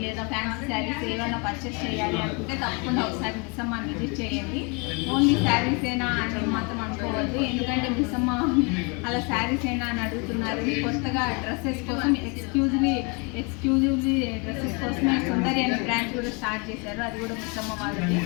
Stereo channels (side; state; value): right; quieter; 32.0 dB